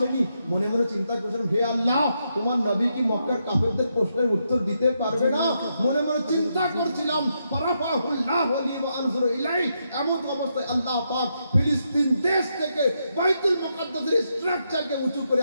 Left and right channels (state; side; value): inverted; both; correlation -0.81